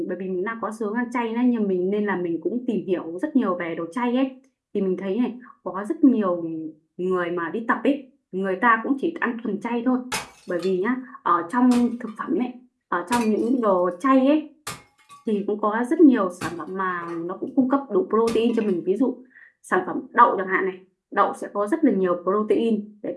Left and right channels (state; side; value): identical; both; correlation 1.00